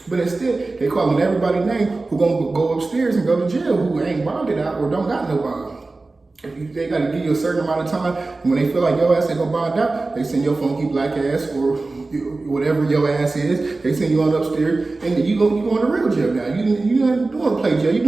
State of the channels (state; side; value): quieter; left; 3.4 dB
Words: But instead, they calling everybody's name who gonna go upstairs and go to jail who ain't bonded out or don't got no bond. They gotta give you a certain amount of time, and when they feel like your ass ain't gonna bond out, they send your funky black ass or whatever your ass is, they send you on upstairs, and you going to real jail now. You not doing play jail, you